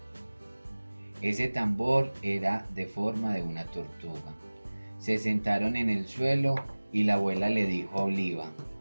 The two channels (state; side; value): inverted; both; correlation -1.00